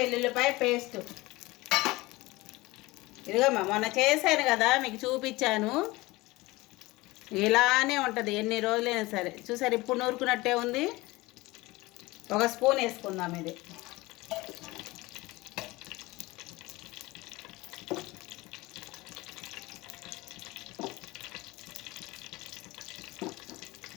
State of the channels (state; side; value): quieter; right; 21.0 dB